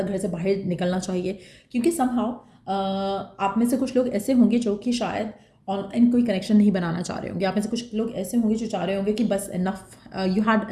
घर से बाहर निकलना चाहिए, क्योंकि समहाउ आप में से कुछ लोग ऐसे होंगे जो कि शायद ऑनलाइन कोई कनेक्शन नहीं बनाना चाह रहे होंगे। आप में से कुछ लोग ऐसे होंगे जो चाह रहे होंगे कि बस enough, you had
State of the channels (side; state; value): both; identical; correlation 1.00